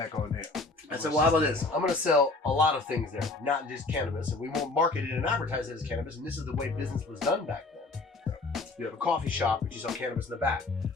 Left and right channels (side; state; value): right; quieter; 3.4 dB